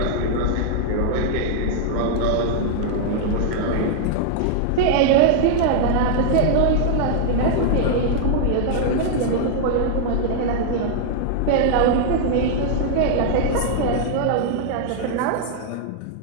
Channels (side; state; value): both; different; correlation -0.01